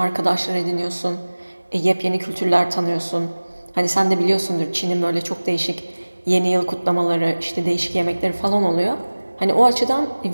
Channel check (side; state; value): both; inverted; correlation -1.00